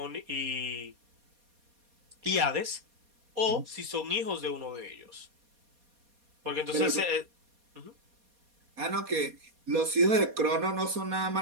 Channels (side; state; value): left; late; 4.2 ms